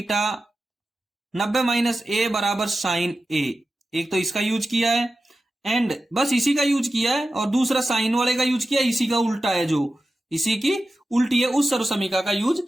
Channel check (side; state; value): both; normal; correlation 0.93